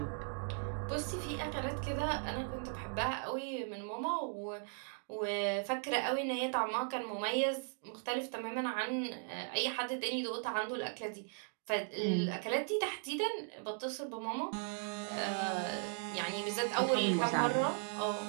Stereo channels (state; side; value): silent; left; 53 dB below the other